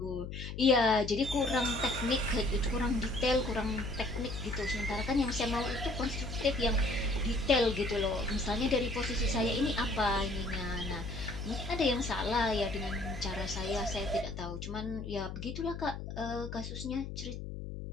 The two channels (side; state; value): left; noise; hum, 8 dB below the sound